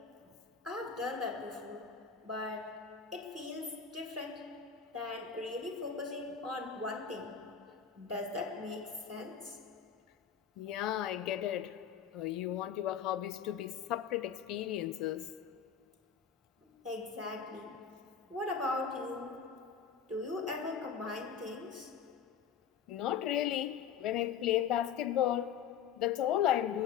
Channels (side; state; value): right; quieter; 7.6 dB